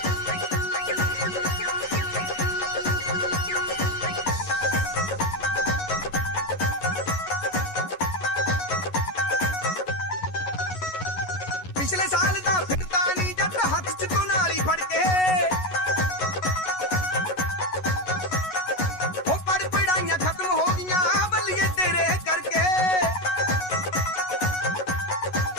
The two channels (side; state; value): right; late; 11 ms